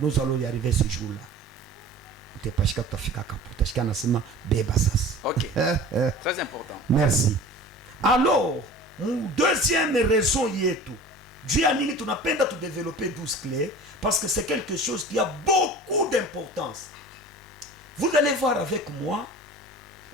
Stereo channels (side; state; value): both; normal; correlation 0.40